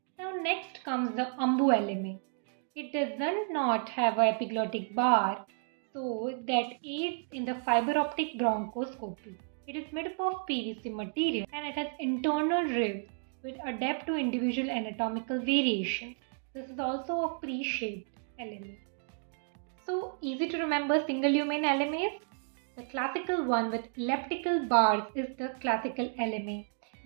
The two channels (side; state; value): left; silent; 56 dB below the other